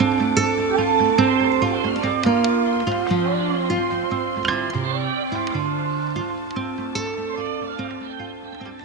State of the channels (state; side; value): quieter; left; 3.9 dB